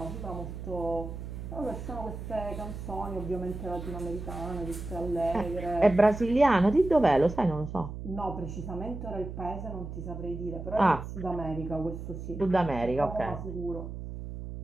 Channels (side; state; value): right; noise; hum, 8 dB below the sound